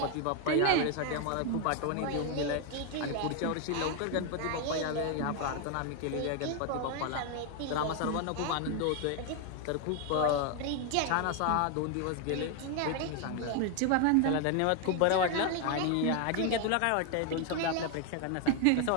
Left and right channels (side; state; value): both; different; correlation 0.01